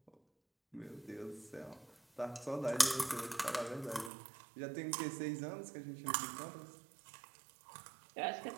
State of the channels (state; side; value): drops out; left; at 4.1 s